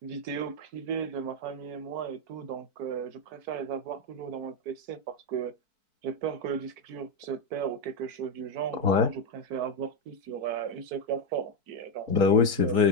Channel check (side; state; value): left; late; 4.5 ms